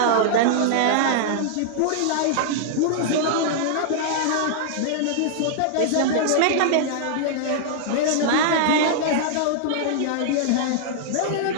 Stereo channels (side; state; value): both; different; correlation -0.01